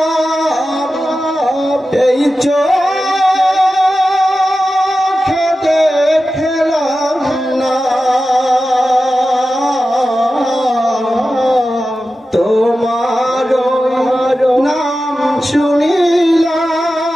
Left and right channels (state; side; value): normal; both; correlation 0.93